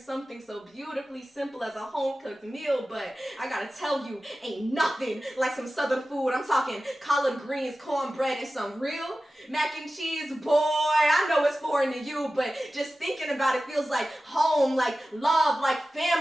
so beautifully simple as a home-cooked meal, but I gotta tell you, ain't nothing like some southern food. I'm talking collard greens, cornbread, and some real mac and cheese. Boy, I know it's foreign to you, but just thinking about it feels like home, like love, like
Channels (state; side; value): normal; both; correlation 0.95